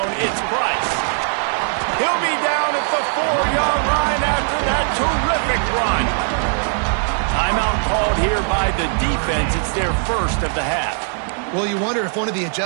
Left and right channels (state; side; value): silent; left; 66 dB below the other